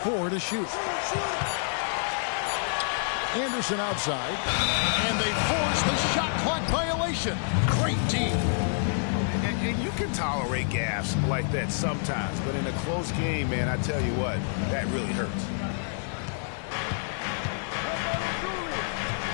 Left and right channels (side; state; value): right; silent; digital silence